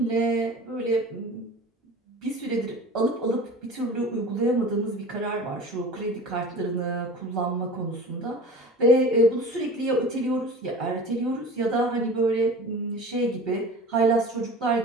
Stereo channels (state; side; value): normal; both; correlation 0.38